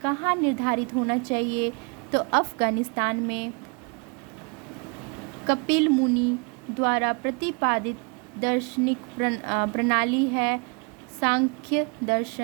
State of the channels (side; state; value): left; quieter; 34.2 dB